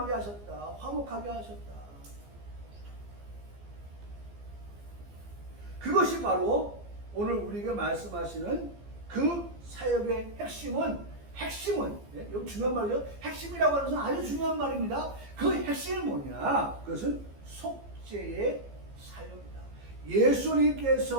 하셨다. 화목하게 하셨다. 그것이 바로 오늘 우리에게 말씀하시는 그 사역의 핵심은 여기 중요한 말이죠. 핵심이라고 하는 것은 아주 중요한 말입니다. 그 핵심이 뭐냐? 그것은 속죄의 사역입니다.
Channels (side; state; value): left; late; 15 ms